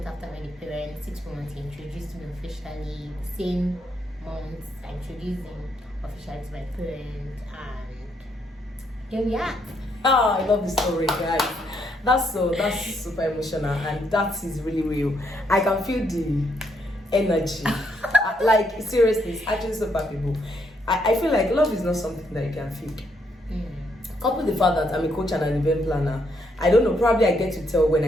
after I met the parents, 6 months he introduced me officially. The same month I introduced him officially to my parents, and here we are. Oh, I love the story, guys. That's super emotional, and that is really real. I can feel the energy. Like, seriously, it's actually so palpable. I feel like love is not something that you can feel. Couple the fact that I'm a coach and an event planner, I don't know, probably I get to tell when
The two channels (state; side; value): normal; both; correlation 0.75